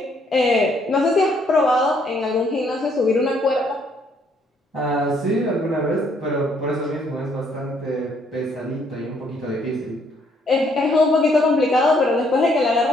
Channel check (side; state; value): both; normal; correlation 0.68